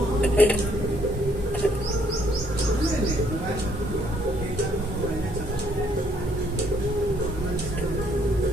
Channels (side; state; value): both; normal; correlation 0.67